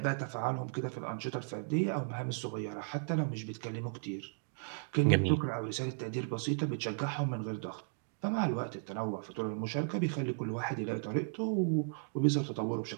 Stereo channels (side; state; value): left; silent; digital silence